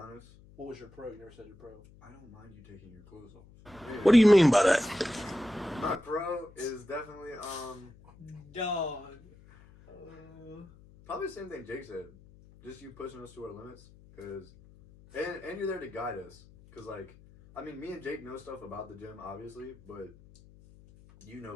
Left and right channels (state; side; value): noise; left; hum, 23 dB below the sound